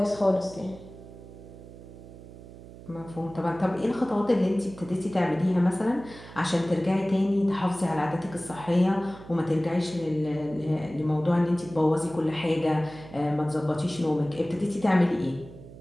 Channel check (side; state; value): right; noise; hum, 17 dB below the sound